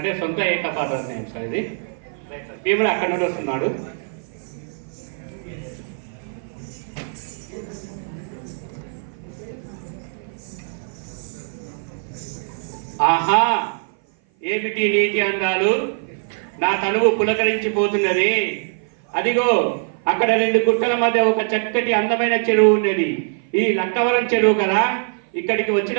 సొంత ఏకపాత్ర నేమ్ సార్ ఇది. భీముడు అక్కడి నుండి వస్తున్నాడు. ఆహా, ఏమిటి నీతి అందాలు, నా తనువు పులకరించిపోతున్నది. అదిగో అక్కడ రెండు గుట్టల మధ్య ఒక చక్కటి అందమైన చెరువు ఉన్నది. ఈ లక్కవరం చెరువు కదా. ఇక్కడికి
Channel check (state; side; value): silent; left; 56 dB below the other